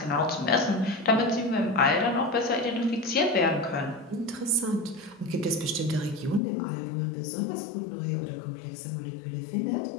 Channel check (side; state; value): right; drops out; at 6.4 s